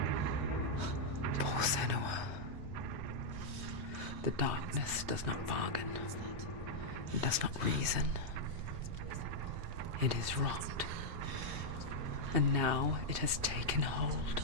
Poor Senua. The darkness does not bargain. It does not reason. It is rot. And now it has taken hold.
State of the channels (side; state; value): left; late; 3.2 ms